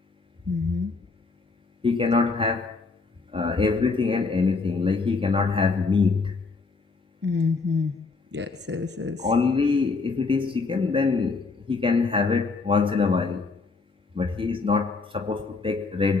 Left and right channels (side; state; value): right; quieter; 4.2 dB